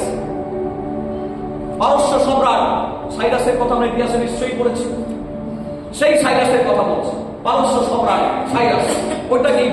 পারস্য সম্রাট। সাইরাসের কথা আমরা ইতিহাসে নিশ্চয়ই পড়েছি। সেই সাইরাসের কথা বলছে, পারস্য সম্রাট সাইরাস। ওইটাকেই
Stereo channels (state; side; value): identical; both; correlation 1.00